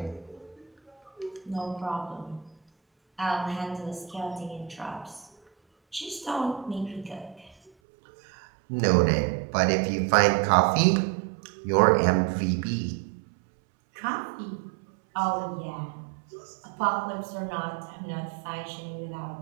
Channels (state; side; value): drops out; left; at 7.7 s